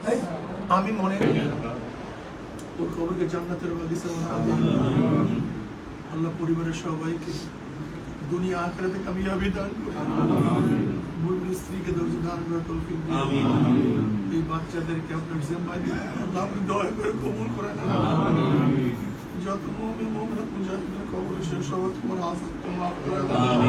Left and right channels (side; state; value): both; identical; correlation 1.00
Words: আমি মনে করি ওর কবরকে জান্নাতের বাগিচা বানাবে। আল্লাহ পরিবারের সবাইকে দুনিয়া আখিরাতে কামিয়াবি দান করে, মূল স্ত্রীকে ধৈর্য দান করে তৌফিক দিন। এই বাচ্চাদেরকে আপনার জিম্মায় দিন, আল্লাহ আপনি দয়া করে কবুল করেন। যত মুমিন মুমিনাত মুজাহিদের কবরে সে সবাই তোমার আফত মাফ করে দাও।